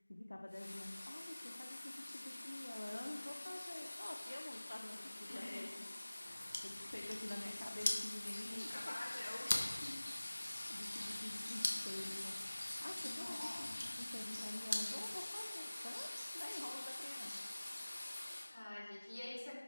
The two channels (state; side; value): inverted; both; correlation -1.00